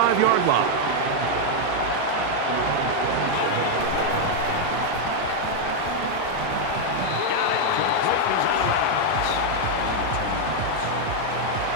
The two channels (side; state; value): both; different; correlation 0.00